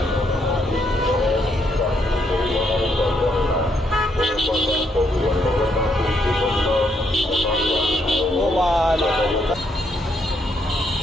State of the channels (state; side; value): normal; both; correlation 0.75